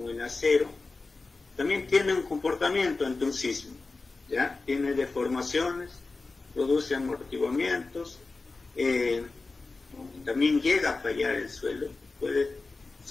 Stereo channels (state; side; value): quieter; right; 3.7 dB